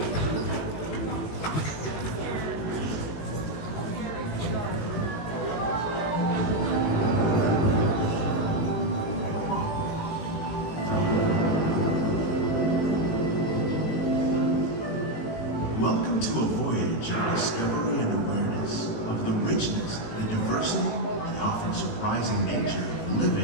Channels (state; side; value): late; right; 18 ms